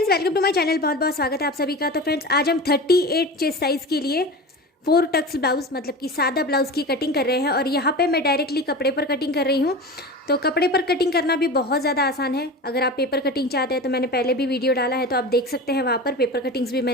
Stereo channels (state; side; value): normal; both; correlation 0.30